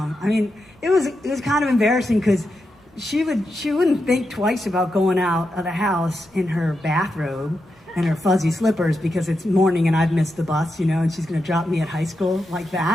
mean, it was kind of embarrassing because she wouldn't think twice about going out of the house in her bathrobe and her fuzzy slippers because it's morning and I've missed the bus, and she's going to drop me at high school like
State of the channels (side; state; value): both; normal; correlation 0.87